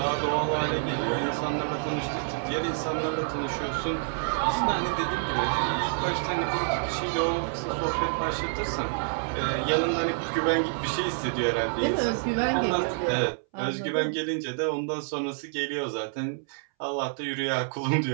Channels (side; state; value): left; silent; 60 dB below the other